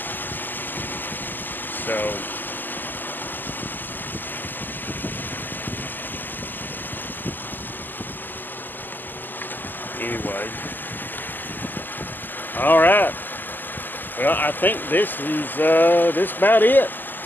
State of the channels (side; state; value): right; late; 0.088 ms